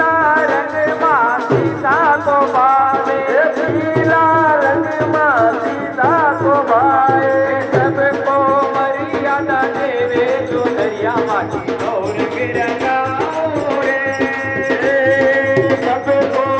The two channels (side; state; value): both; identical; correlation 1.00